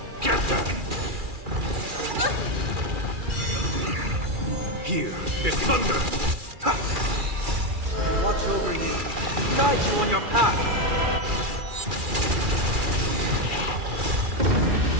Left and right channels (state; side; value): late; left; 2.4 ms